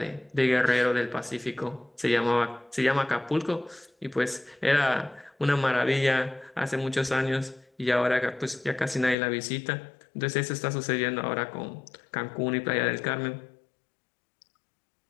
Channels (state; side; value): drops out; right; at 9.2 s